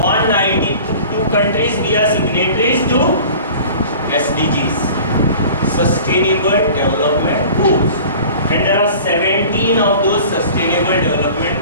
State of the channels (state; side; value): inverted; both; correlation -0.42